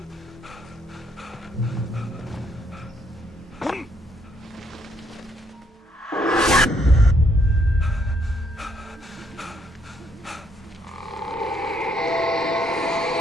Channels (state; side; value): normal; both; correlation 0.71